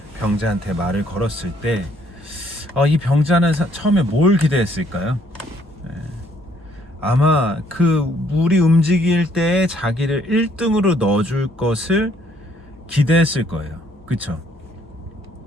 병자한테 말을 걸었을 때, 이 병자는 처음에 뭘 기대했을까요? 아마 그 물이 움직일 때 자기를 1등으로 넣어줄 것을 기대했을 거예요. 그쵸?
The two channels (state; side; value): normal; both; correlation 0.66